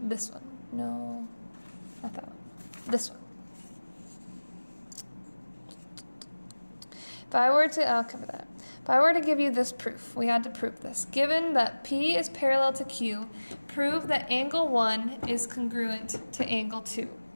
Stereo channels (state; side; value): inverted; both; correlation -1.00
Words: one. No, not that one. This one. If I were to, I'll cover that. If I were to give you this proof, we had to prove this. Given that P is parallel to Q, prove that angle 1 is congruent to angle 2.